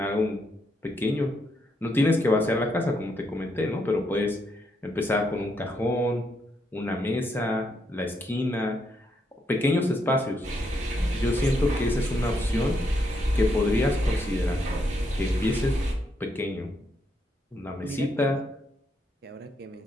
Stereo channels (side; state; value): both; normal; correlation 0.78